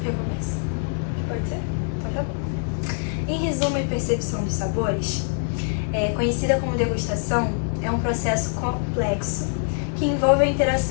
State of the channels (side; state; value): right; silent; 58 dB below the other